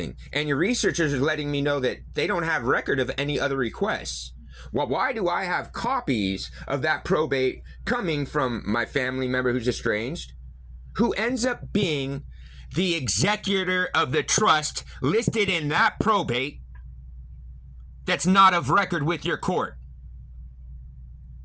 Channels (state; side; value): identical; both; correlation 1.00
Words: And your researchers are letting me know that they don't have record of any other requests. Well, why do I have copies of that probate coming from my family member who's estranged, who ends up being the executor of the trust listed in that probate that's not of record with your court?